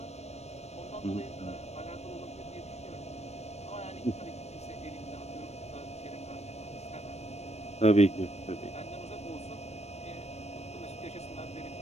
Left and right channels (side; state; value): right; late; 0.31 ms